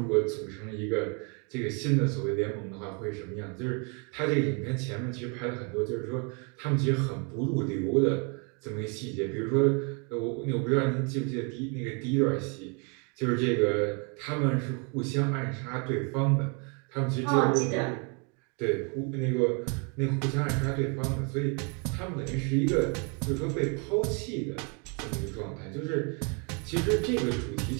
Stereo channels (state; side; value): quieter; left; 35.2 dB